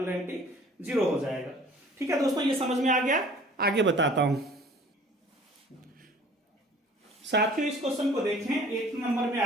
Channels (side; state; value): both; normal; correlation 0.50